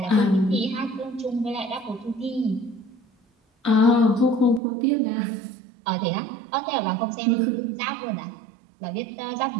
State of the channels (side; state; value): left; drops out; at 4.6 s